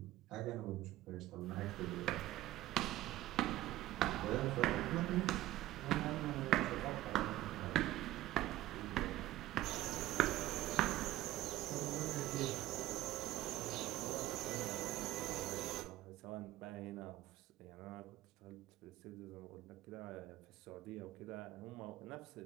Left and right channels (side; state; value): left; quieter; 15.4 dB